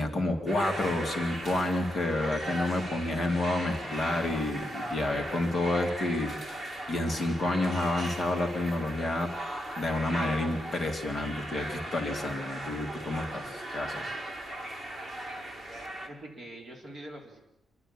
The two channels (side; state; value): both; normal; correlation 0.83